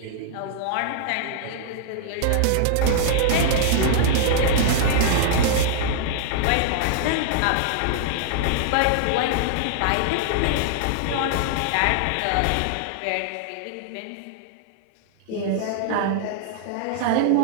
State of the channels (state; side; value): different; both; correlation -0.01